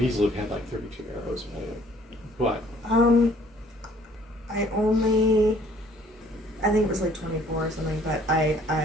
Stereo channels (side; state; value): both; normal; correlation 0.58